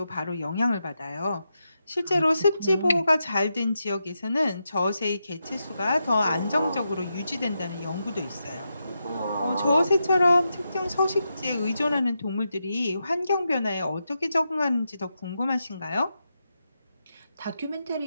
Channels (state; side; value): inverted; both; correlation -0.87